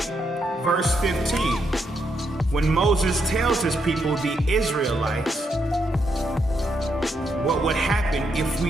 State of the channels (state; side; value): normal; both; correlation 0.79